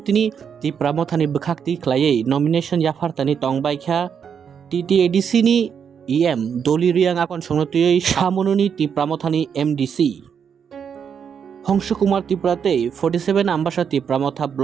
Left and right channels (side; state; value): left; quieter; 7.3 dB